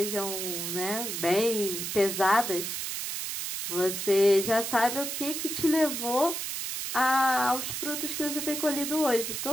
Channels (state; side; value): noise; right; hiss, 4 dB below the sound